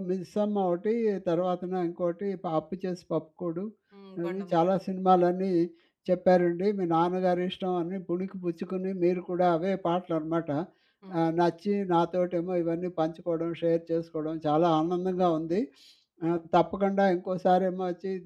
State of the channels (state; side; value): identical; both; correlation 1.00